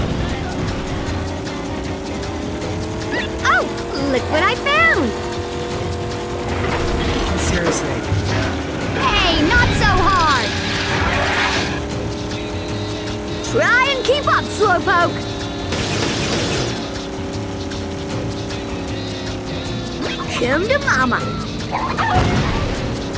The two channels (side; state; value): both; identical; correlation 1.00